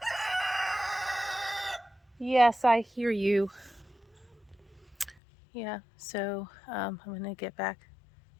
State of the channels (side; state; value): right; drops out; at 5.2 s